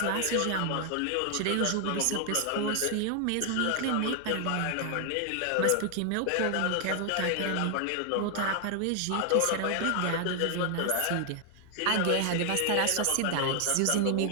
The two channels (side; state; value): both; different; correlation 0.00